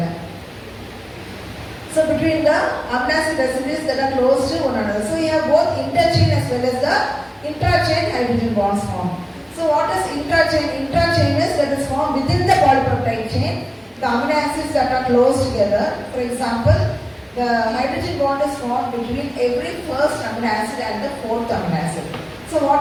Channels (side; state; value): both; identical; correlation 1.00